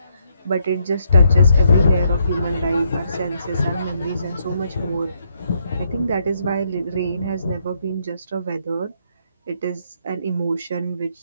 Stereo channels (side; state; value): both; inverted; correlation -0.75